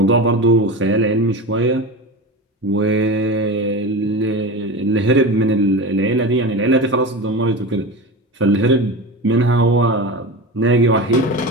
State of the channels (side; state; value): both; normal; correlation 0.26